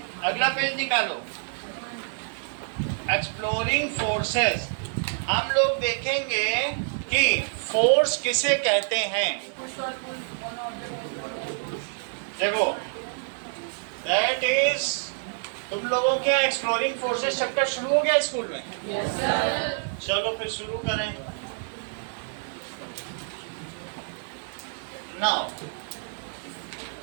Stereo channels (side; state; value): left; silent; digital silence